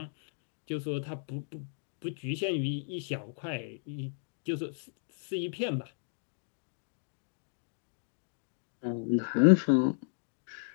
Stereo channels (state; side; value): silent; right; digital silence